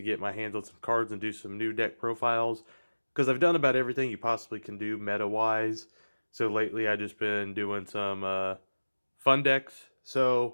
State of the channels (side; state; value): both; inverted; correlation -1.00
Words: my hands on some cards and do some new deck profiles. Because I've done about everything you possibly can do meta-wise. So lately I've just been doing some fun decks.